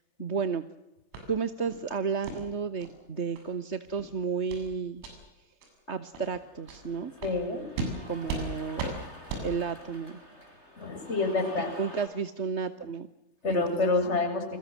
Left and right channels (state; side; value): late; right; 3.2 ms